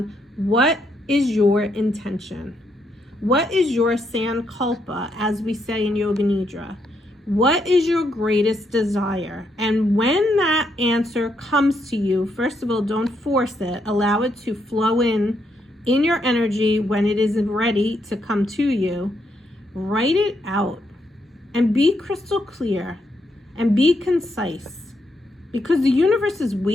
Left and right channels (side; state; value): both; normal; correlation 0.77